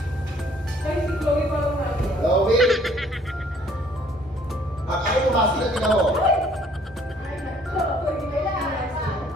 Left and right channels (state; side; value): normal; both; correlation 0.60